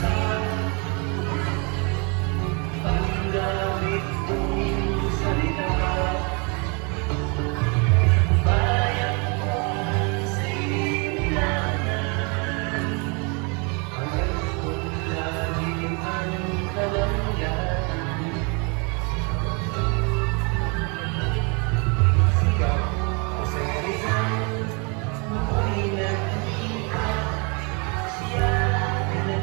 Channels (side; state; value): left; quieter; 33.2 dB